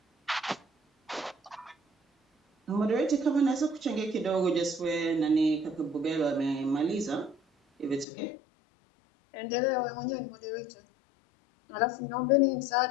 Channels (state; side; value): drops out; right; at 8.1 s